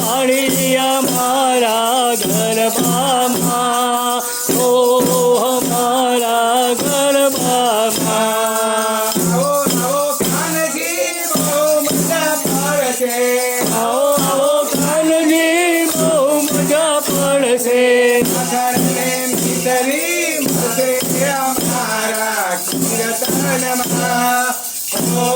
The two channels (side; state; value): both; identical; correlation 1.00